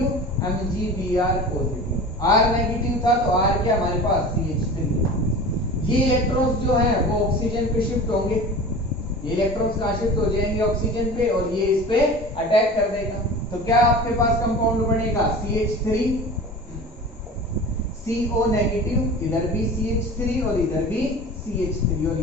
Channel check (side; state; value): both; normal; correlation 0.36